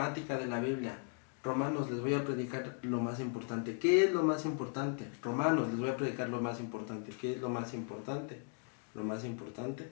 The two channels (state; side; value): quieter; right; 39.2 dB